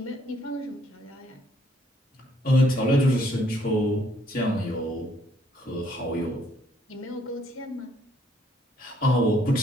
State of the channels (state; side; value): normal; both; correlation 0.67